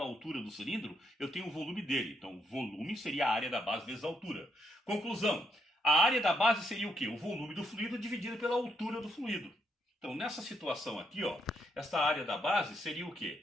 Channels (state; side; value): normal; both; correlation 0.76